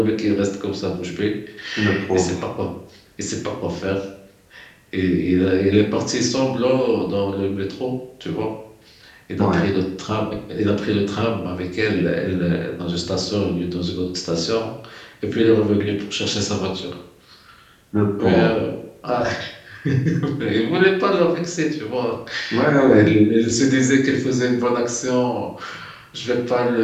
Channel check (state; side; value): identical; both; correlation 1.00